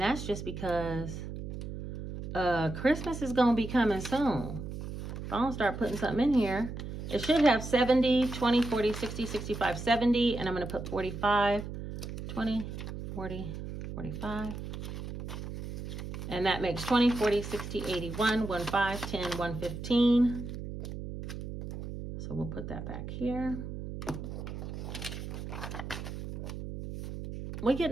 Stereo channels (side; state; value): right; noise; hum, 8 dB below the sound